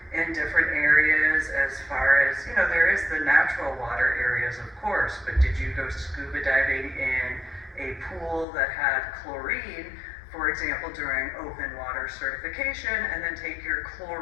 in different areas, as far as, there is the natural water areas, of course, but did you go scuba diving in a pool that had chlorine, for example, during open water certification, and then take your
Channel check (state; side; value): drops out; right; at 8.5 s